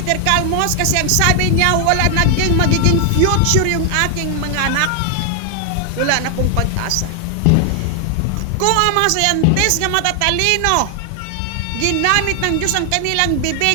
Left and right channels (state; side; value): different; both; correlation 0.00